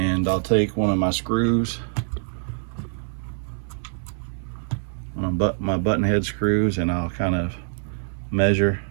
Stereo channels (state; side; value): silent; left; 62 dB below the other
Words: I'll take one of my screws, my button head screws, and I'll kind of measure